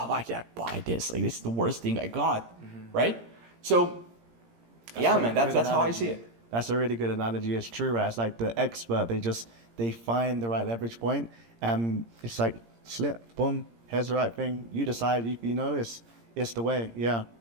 why did I buy this? Like, this is the worst thing I got, right? So, man, that's how I see it. That's a really good analogy. It's true, right? It's like the expert, they find the right leverage point, and it's like slip, boom, here's the right thing. You decide, you know, it's the way. Yeah,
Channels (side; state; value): left; late; 17 ms